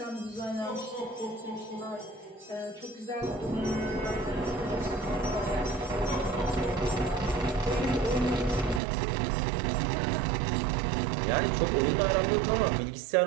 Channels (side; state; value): left; drops out; at 8.8 s